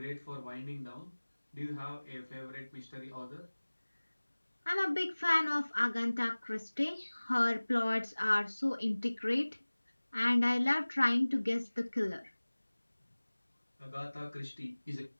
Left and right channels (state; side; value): inverted; both; correlation -1.00